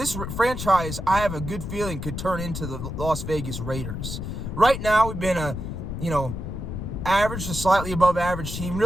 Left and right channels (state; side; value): noise; left; rumble, 6 dB below the sound